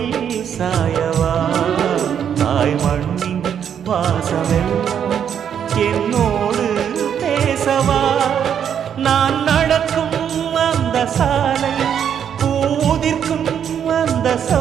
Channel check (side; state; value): left; quieter; 8.6 dB